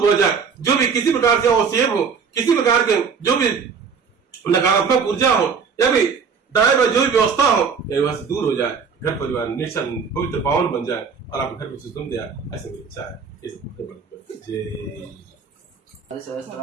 हो जाए, जो भी किसी प्रकार से अवसेब हो, किसी प्रकार के जो भी नकारात्मक ऊर्जा हो, या फिर दाएं जो भी व्यवस्था हो, वहां से दूर हो जाए, घर परिवार निश्चल पवित्र पावन बन जाए और आप घर को सुगम दिया, ऐसे मेरी इच्छा है। जय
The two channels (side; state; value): left; quieter; 5.9 dB